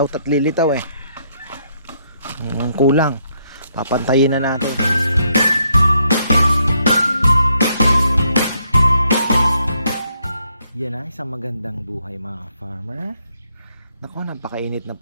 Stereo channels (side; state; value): both; inverted; correlation -0.74